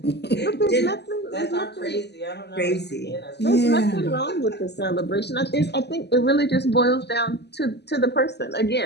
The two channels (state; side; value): late; right; 0.49 ms